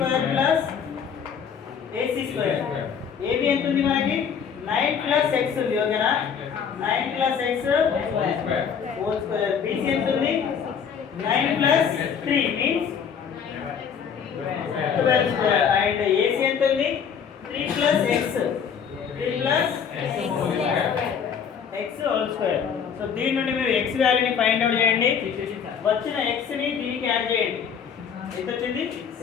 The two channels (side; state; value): right; quieter; 7.2 dB